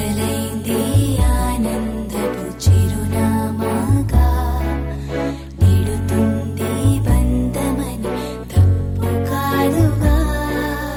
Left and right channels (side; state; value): both; identical; correlation 1.00